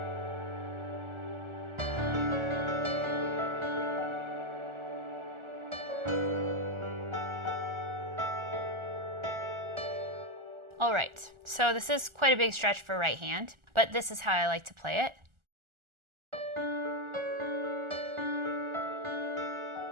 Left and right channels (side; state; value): left; late; 1.4 ms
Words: All right, so this is quite a big stretch for right hand, but this is how I like to play it.